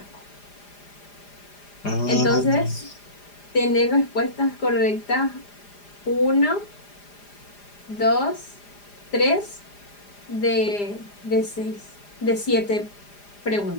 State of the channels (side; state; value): right; late; 4.9 ms